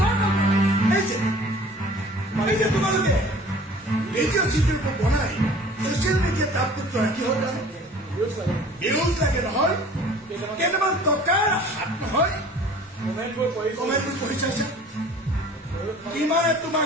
এই যে তোমালোকে ভিডিঅ' চিডিঅ' বনাই ছচিয়েল মিডিয়াত আপলোড কৰা কি হ'ল ভিউজ লাগে নহয় কেইটামান টকাৰ হাত নহয় কমেণ্টবোৰ পঢ়ি চাইছে কিমানে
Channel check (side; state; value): both; normal; correlation 0.48